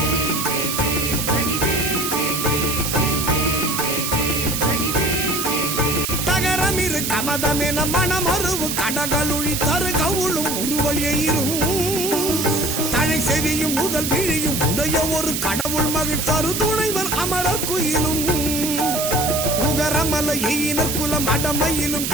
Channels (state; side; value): noise; right; hiss, 2 dB below the sound